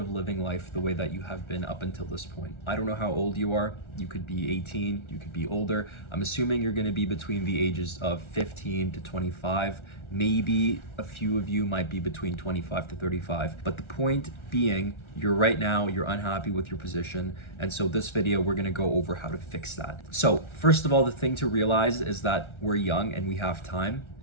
living life the way that you have been up until this point. I don't know how old you are. You could be 18, you could be older. I'm assuming you're going to be between the ages of 15 to 25. Maybe a few of you might be between 25 to 35. But the point being, you're unhappy with your position. And so this video, we're going to go over how to fix that. So first of all, the thing to realize is that we're young and we have time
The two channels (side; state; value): right; late; 1.4 ms